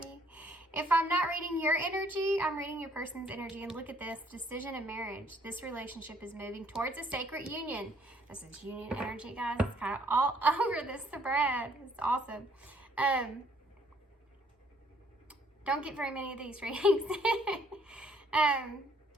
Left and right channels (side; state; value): both; normal; correlation 0.64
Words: If I'm not reading your energy, I'm reading your person's energy. And look at this. Decision and marriage. This relationship is moving towards a sacred union. This is union energy, guys. It's kind of all over this thread. It's awesome. Don't get very many of these readings.